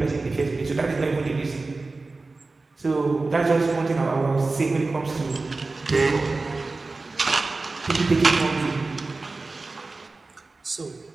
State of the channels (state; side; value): quieter; left; 3.6 dB